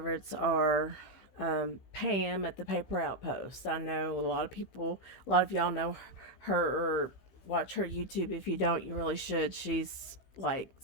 are Pam at the Paper Outpost. I know a lot of y'all know her or watch her YouTube. If you don't, you really should. She's like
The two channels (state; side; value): late; right; 16 ms